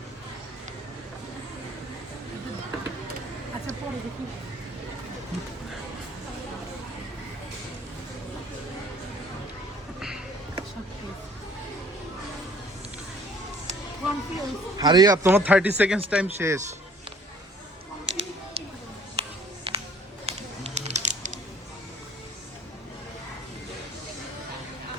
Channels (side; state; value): both; normal; correlation 0.56